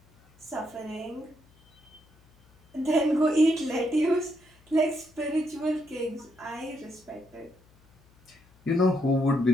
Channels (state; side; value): noise; left; hum, 30 dB below the sound